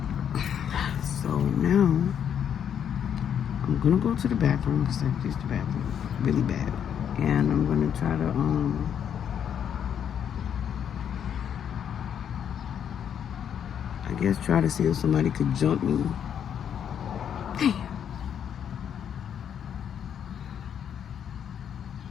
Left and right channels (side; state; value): right; quieter; 8.6 dB